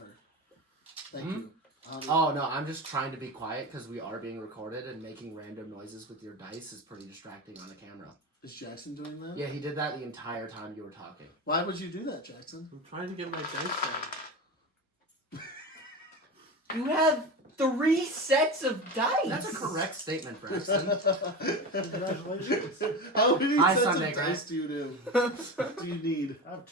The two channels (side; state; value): both; normal; correlation 0.25